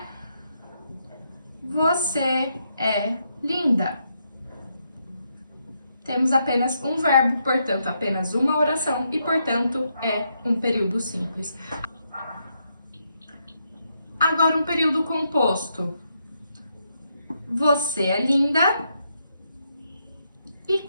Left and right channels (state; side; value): inverted; both; correlation -0.79